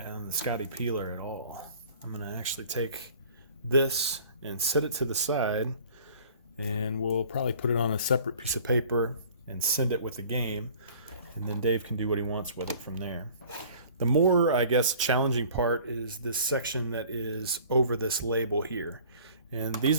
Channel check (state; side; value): inverted; both; correlation -0.49